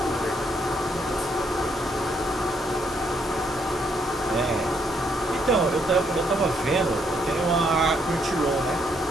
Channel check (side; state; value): both; normal; correlation 0.73